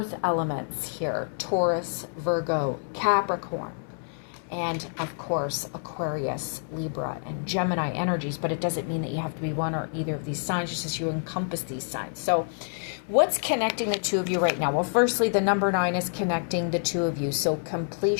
elements here. Taurus, Virgo, Capricorn. And of course, Aquarius, Libra, and Gemini energies, but it doesn't mean that you have to be one or either of these signs, just as you encompass these signs. So what's connecting the two of you right now? Well, firstly, the number 9 is connecting the two of you. So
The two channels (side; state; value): right; silent; 60 dB below the other